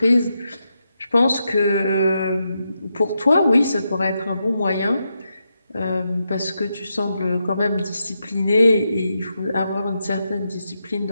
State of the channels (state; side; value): inverted; both; correlation -0.85